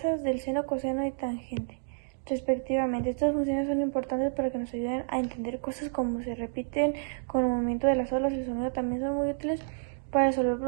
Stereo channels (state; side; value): silent; left; digital silence